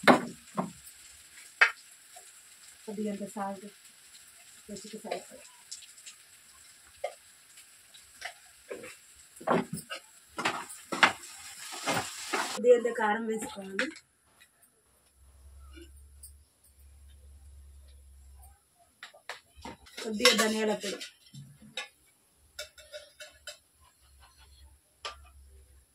కొద్దిగా సాల్ట్, రుచికి సరిపడ, కొద్దిగా కారం వేసుకోవాలి, కొద్దిగా ధనియాల పొడి,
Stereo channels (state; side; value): identical; both; correlation 1.00